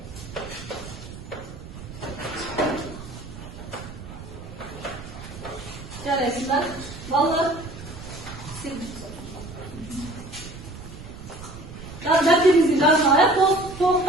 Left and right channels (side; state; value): right; noise; rumble, 13 dB below the sound